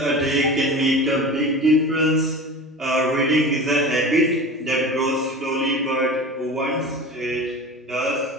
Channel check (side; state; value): both; normal; correlation 0.34